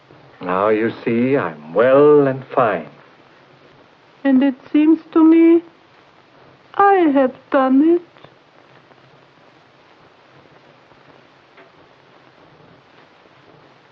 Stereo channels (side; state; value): both; identical; correlation 1.00